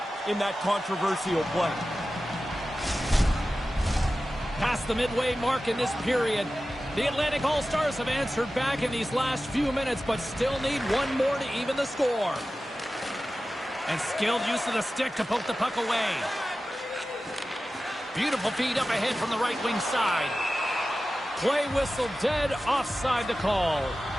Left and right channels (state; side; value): normal; both; correlation 0.94